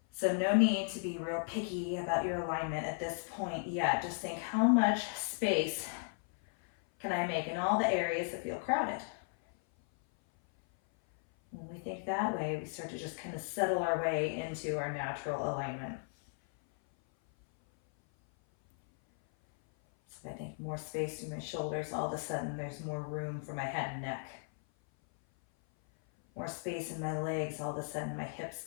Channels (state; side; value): silent; right; 54 dB below the other